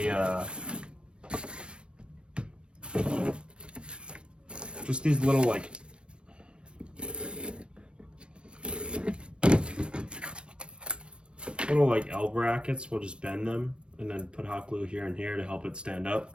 just these little like L brackets. We'll just bend them and then put hot glue here and here to help it stand up.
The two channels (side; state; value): left; late; 0.057 ms